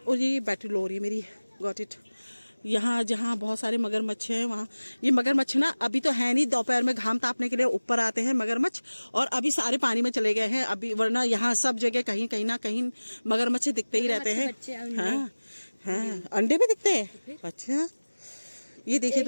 और ये बैटरी लो रही है मेरी, गॉट इट। यहाँ जहाँ बहुत सारे मगरमच्छ हैं, वहाँ ये मगरमच्छ ना अभी तो है नहीं, दोपहर में घाम तापने के लिए ऊपर आते हैं मगरमच्छ, और अभी सारे पानी में चले गए हैं अभी, वरना यहाँ सब जगह कहीं कहीं ना कहीं मगरमच्छ दिखते ही रहते हैं। हाँ हाँ, अंडे भी दिखते हैं। अच्छा, ये देखिए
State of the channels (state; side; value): inverted; both; correlation -1.00